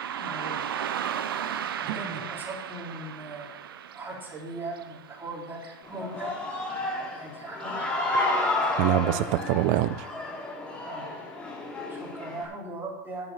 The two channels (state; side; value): quieter; left; 3.5 dB